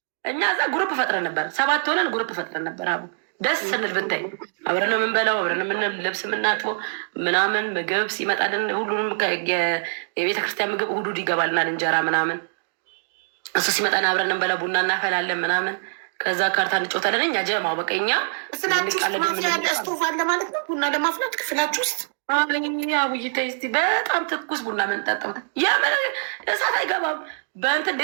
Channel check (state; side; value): silent; left; digital silence